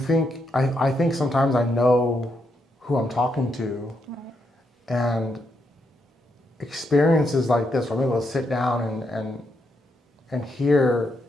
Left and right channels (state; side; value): normal; both; correlation 0.80